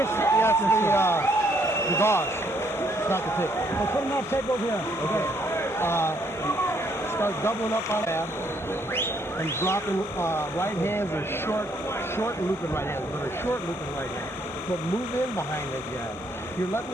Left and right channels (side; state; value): both; normal; correlation 0.69